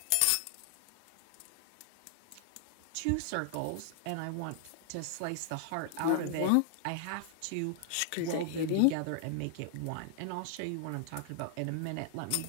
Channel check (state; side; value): different; both; correlation 0.00